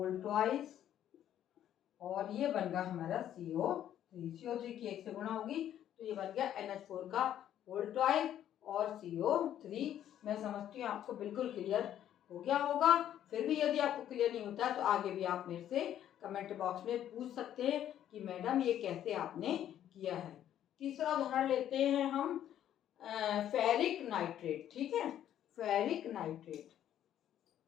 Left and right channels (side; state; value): right; quieter; 11.0 dB